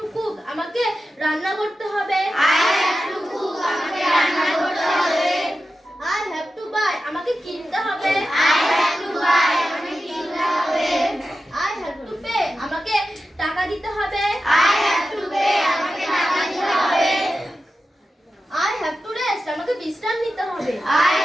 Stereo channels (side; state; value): both; normal; correlation 0.92